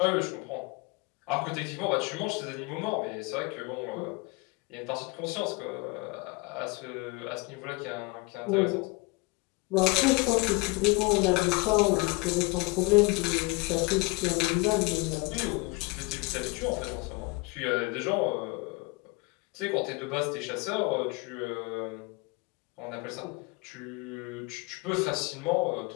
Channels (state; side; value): quieter; right; 26.2 dB